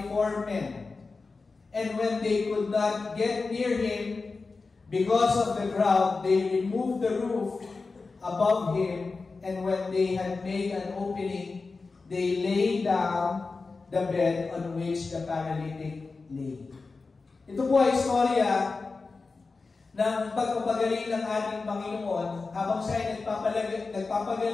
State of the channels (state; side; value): quieter; right; 4.1 dB